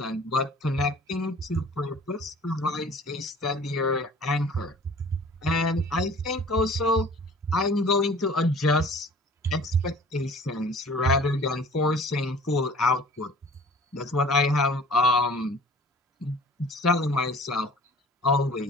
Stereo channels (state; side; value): normal; both; correlation 0.48